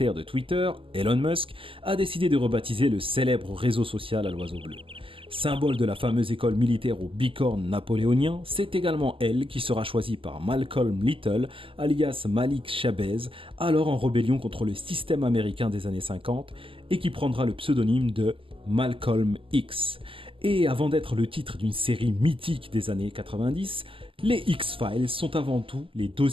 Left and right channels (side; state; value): left; late; 0.25 ms